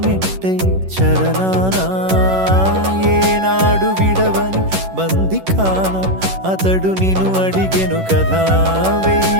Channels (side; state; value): left; late; 11 ms